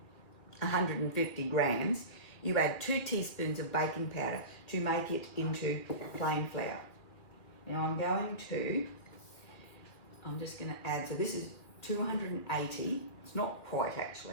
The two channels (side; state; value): right; late; 2.3 ms